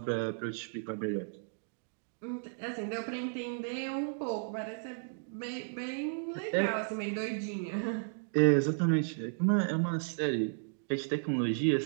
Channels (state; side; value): silent; left; digital silence